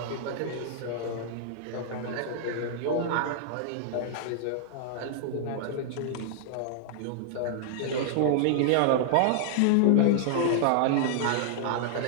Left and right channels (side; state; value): both; different; correlation -0.01